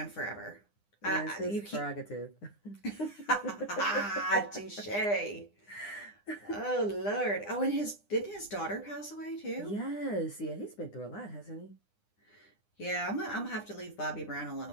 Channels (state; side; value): late; right; 9.8 ms